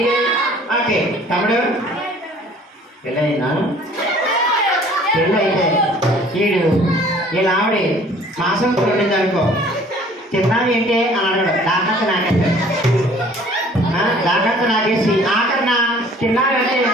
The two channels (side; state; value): both; normal; correlation 0.53